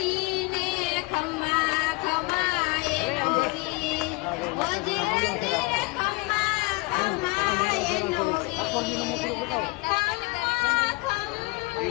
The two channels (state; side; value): quieter; right; 26.1 dB